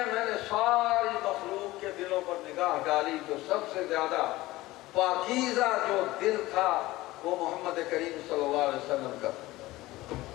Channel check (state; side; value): quieter; right; 18.3 dB